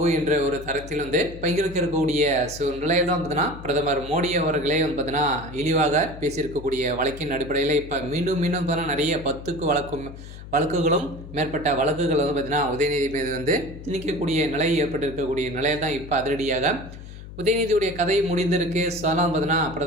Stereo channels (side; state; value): left; noise; hum, 14 dB below the sound